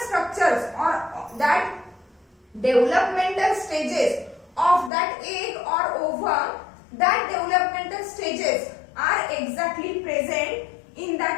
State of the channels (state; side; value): drops out; right; at 4.9 s